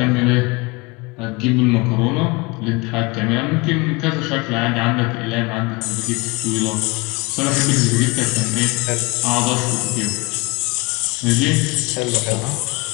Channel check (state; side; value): quieter; right; 25.6 dB